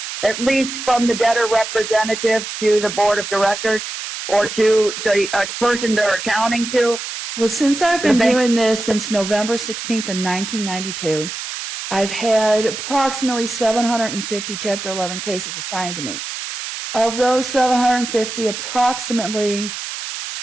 at least from the debtor representative to the board of directors or to the person they're accounting to? Well, since I've been doing this since November 16th of 1992, I've had approximately 750 Chapter 11 cases assigned to me. of those 750, approximately,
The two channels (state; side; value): noise; right; hiss, 7 dB below the sound